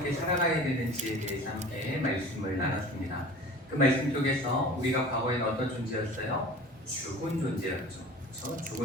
살아가야 되는지에 대해서 함께 말씀을 나눴습니다. 그 말씀 속에서 우리가 과거에는 어떤 존재였어요? 죽은 존재였죠. 그렇죠?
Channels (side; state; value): both; normal; correlation 0.41